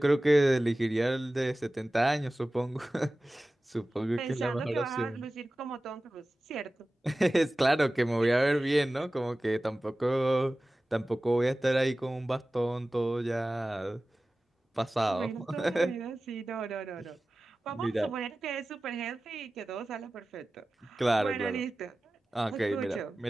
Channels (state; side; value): normal; both; correlation 0.96